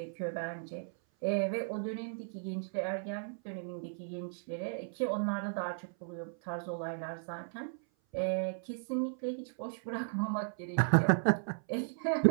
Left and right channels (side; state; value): left; silent; 54 dB below the other